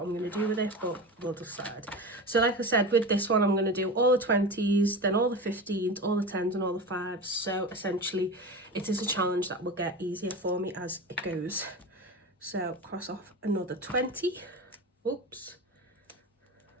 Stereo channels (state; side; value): normal; both; correlation 0.28